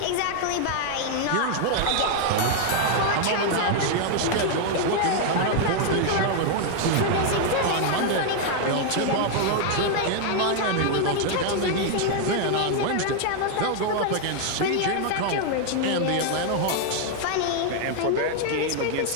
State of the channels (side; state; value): both; different; correlation 0.00